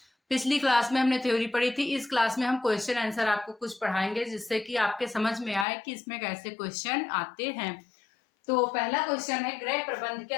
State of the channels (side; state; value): right; drops out; at 5.7 s